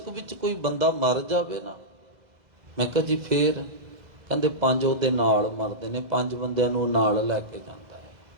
ਵਿੱਚ ਕੋਈ ਬੰਦਾ ਮਰ ਜਾਵੇ ਨਾ। ਮੈਂ ਕਿਹਾ ਜੀ ਫੇਰ? ਕਹਿੰਦੇ 5 ਉਹਦੇ ਨਾਲ ਮਰਦੇ ਨੇ, 5 ਬੰਦਿਆਂ ਨੂੰ ਨਾਲ ਲੈ ਕੇ ਜਾਂਦਾ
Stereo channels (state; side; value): late; left; 2.0 ms